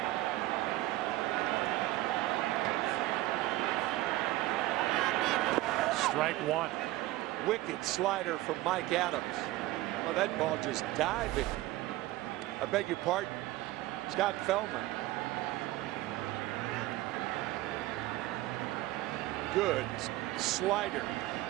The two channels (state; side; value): quieter; left; 17.3 dB